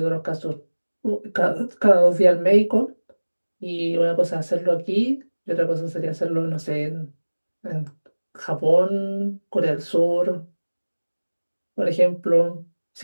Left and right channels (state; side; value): inverted; both; correlation -1.00